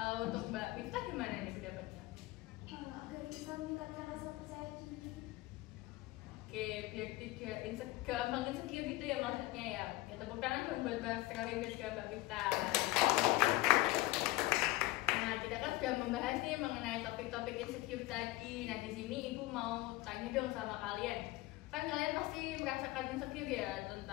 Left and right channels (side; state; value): right; quieter; 19.3 dB